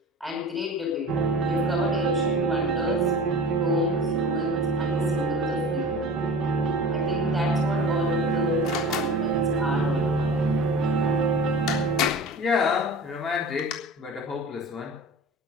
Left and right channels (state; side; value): normal; both; correlation 0.37